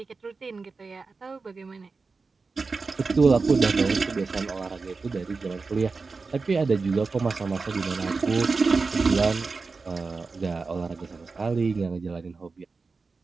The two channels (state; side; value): quieter; left; 4.3 dB